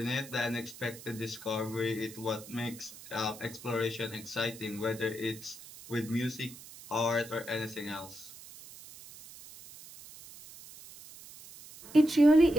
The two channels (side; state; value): right; noise; hiss, 17 dB below the sound